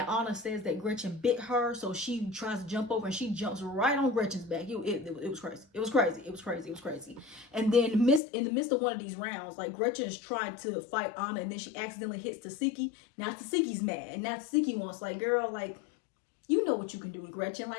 Anna says that Gretchen bit her, so she tries to jump over and she jumps right on Gretchen's back. It was crazy. It was crazy. It was crazy. It was crazy. And then in the midst of one of these rounds, like, Gretchen is trying to fight Anna, and then she accidentally hits Tasiki. Now Tasiki's mad, and now Tasiki wants, like, girl, like, you know what you can do with Gretchen.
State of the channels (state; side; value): drops out; right; at 8.2 s